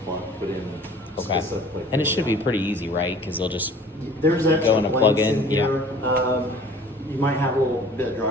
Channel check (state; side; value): normal; both; correlation 0.48